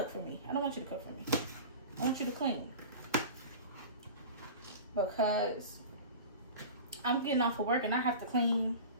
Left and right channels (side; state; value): both; inverted; correlation -0.34